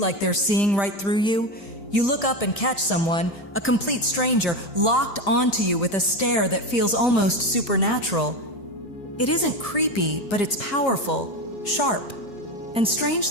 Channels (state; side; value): late; right; 4.4 ms